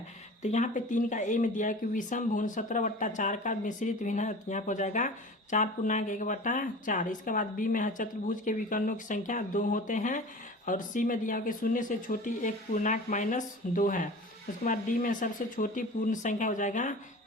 तो यहाँ पे 3 का A में दिया है कि विषम भुन 17/4 का मिश्रित भिन्न है, यहाँ पे हो जाएगा 4.1/4। इसके बाद B में है चतुर्भुज के विकर्णों की संख्या 2 होते हैं, और C में दिया है कि 0 से छोटी 1 पूर्णांक -2 है। उसके बाद D में सबसे छोटी पूर्ण संख्या हो जाएगा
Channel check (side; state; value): both; normal; correlation 0.37